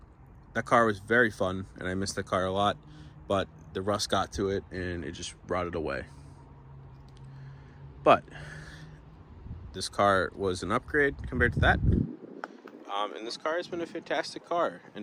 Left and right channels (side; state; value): both; identical; correlation 1.00